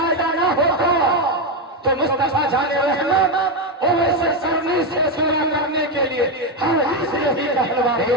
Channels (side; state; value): both; normal; correlation 0.08